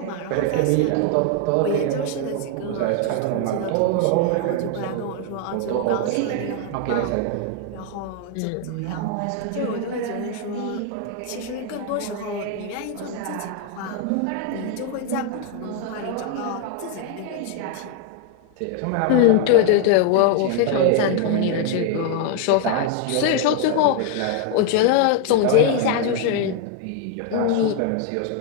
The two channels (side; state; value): both; different; correlation 0.01